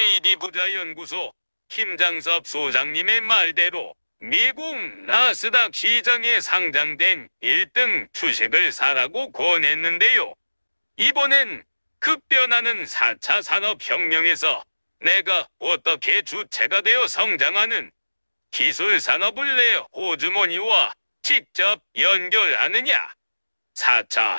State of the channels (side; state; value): both; inverted; correlation -1.00